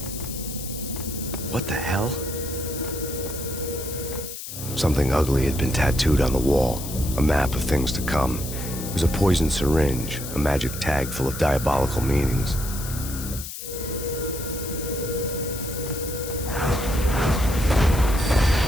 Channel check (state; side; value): noise; left; hiss, 9 dB below the sound